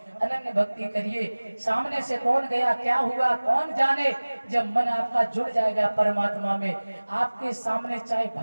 अनन्य भक्ति करिए। सामने से कौन गया, क्या हुआ, कौन जाने। जब मन आपका जुड़ जाएगा परमात्मा में, आपके सामने चाहे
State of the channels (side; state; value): both; inverted; correlation -1.00